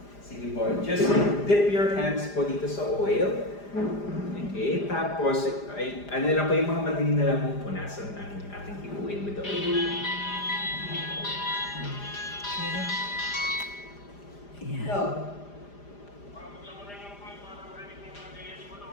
sige po, just dip your hands po dito sa oil. Okay, tapos ay, ano lang po yung mga madali na lang po punasan ang ating ipuin with the oil. Ayan.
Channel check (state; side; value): late; right; 5.0 ms